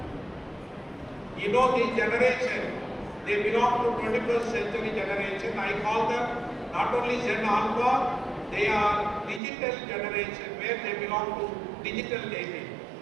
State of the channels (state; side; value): drops out; left; at 9.4 s